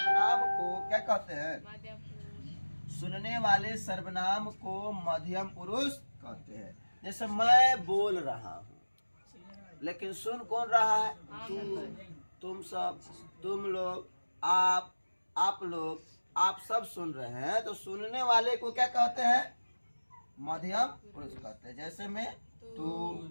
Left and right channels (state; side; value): inverted; both; correlation -1.00